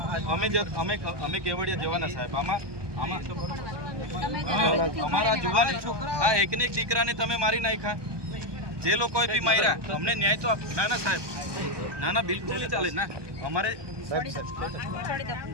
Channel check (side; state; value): left; late; 1.2 ms